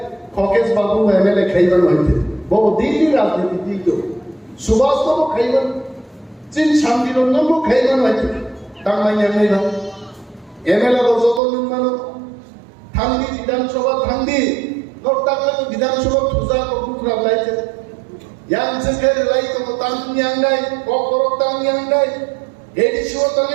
খকেশ বাবু এমএলএ খাইবান হইছে বহু দিল্লি রাজনীতি দিতো সুভাষ তো খাইবান চিন শান্তিরঞ্জন খাইবান হইছে তাংমাইয়া নাইবা এমএলএ যত মানুষ থাঙ্গি বিধানসভা থাঙ্গি নটাকলে বিধানসভা থুজা কুকুরা লাইছে ইয়াং সেকের লাই তো তাঙ্গি আঙ্গাই ককরক তাঙ্গি আঙ্গাই এডিশো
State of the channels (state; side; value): drops out; left; at 11.4 s